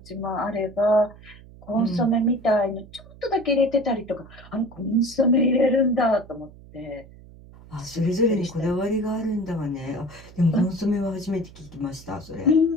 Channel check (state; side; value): noise; right; hum, 20 dB below the sound